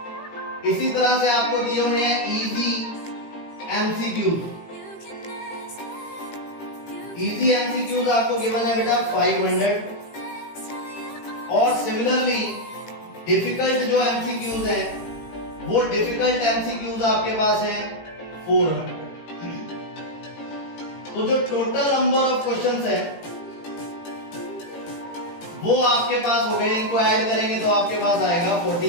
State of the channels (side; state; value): right; late; 18 ms